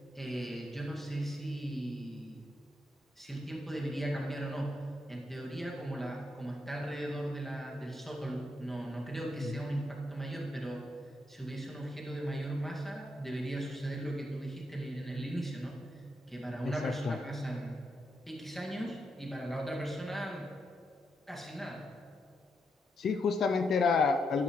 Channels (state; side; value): normal; both; correlation 0.81